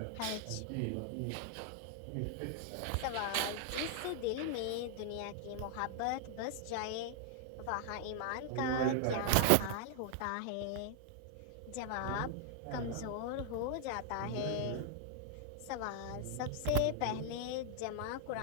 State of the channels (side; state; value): both; different; correlation 0.00